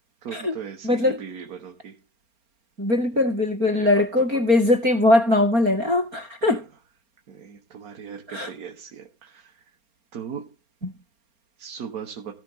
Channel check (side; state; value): left; late; 4.3 ms